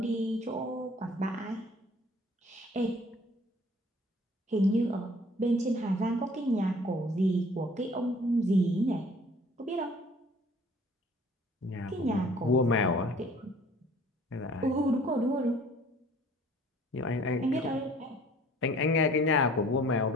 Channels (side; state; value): both; normal; correlation 0.52